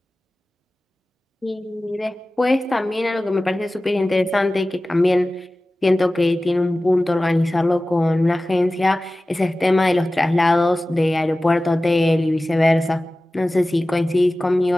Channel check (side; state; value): both; normal; correlation 0.97